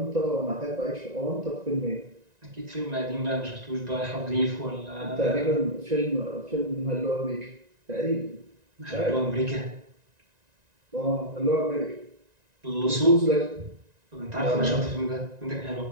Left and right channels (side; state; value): left; late; 1.9 ms